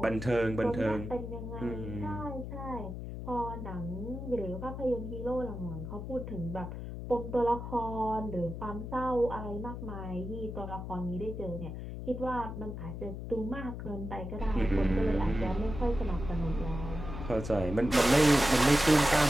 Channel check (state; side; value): noise; left; hum, 7 dB below the sound